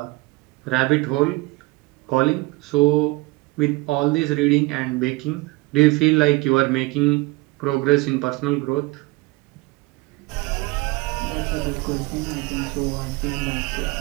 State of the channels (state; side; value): quieter; left; 22.8 dB